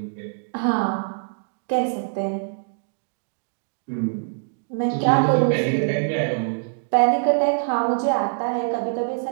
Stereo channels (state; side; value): silent; left; digital silence